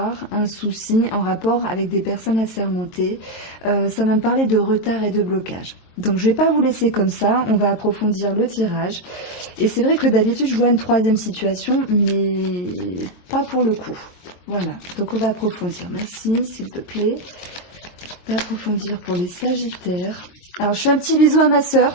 un souci en rapport avec des personnes assermentées. Ça va me parler de retard et de blocage. Donc je ne vais pas vous laisser comme ça, on va approfondir le tirage. Et c'est vrai que d'habitude je vois une 3e situation, mais pas pour le coup. Voilà, donc on va approfondir. Merci s'il te plaît d'approfondir pour les Sagittaires. Alors je fais un petit bisou à ma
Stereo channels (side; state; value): right; late; 22 ms